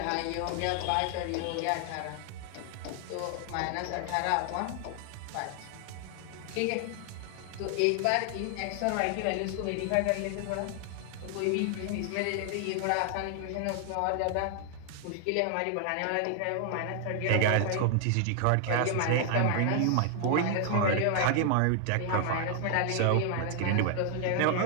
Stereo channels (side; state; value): both; different; correlation 0.00